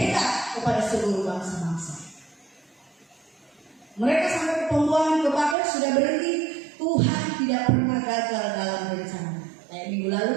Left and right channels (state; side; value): drops out; left; at 5.6 s